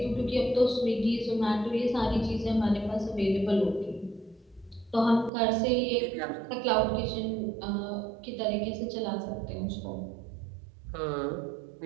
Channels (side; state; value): left; drops out; at 5.3 s